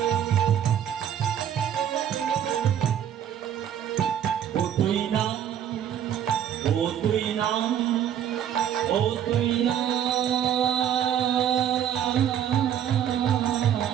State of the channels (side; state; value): left; quieter; 9.9 dB